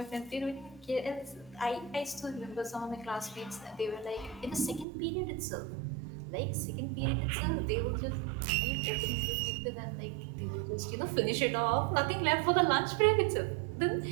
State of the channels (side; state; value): left; drops out; at 4.9 s